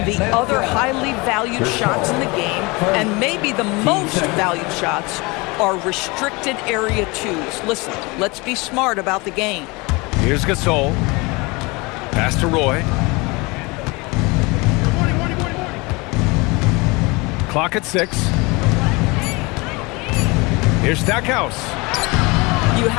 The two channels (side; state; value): right; quieter; 25.7 dB